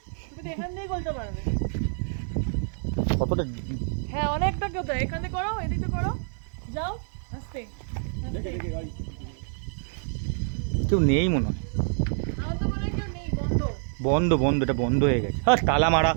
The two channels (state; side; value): silent; left; 56 dB below the other